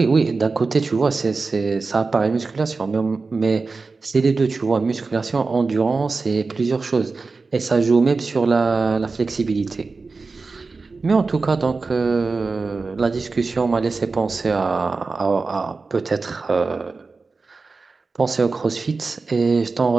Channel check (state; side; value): quieter; left; 4.1 dB